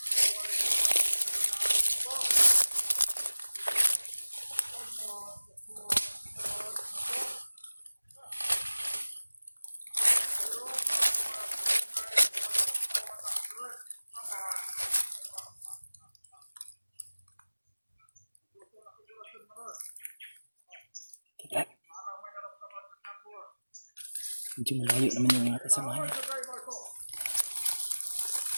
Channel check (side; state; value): both; inverted; correlation -1.00